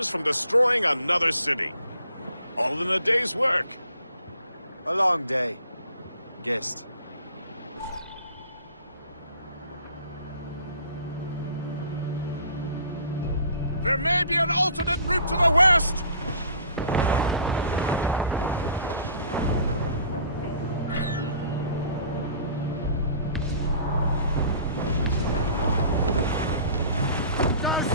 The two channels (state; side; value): inverted; both; correlation -0.51